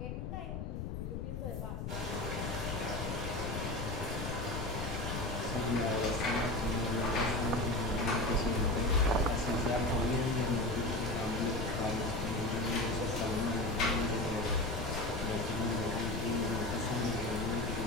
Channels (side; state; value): left; noise; rumble, 5 dB below the sound